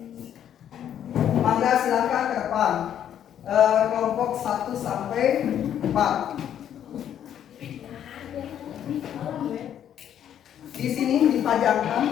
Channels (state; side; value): quieter; right; 10.0 dB